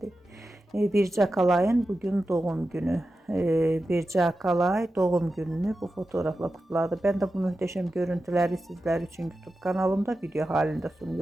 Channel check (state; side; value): normal; both; correlation 0.92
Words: Birce Akalay'ın bugün doğum günü. Birce Akalay doğum gününü bu fotoğrafla kutladı. Ben de bu muhteşem görüntüleri sizler için YouTube kanalımda video halinde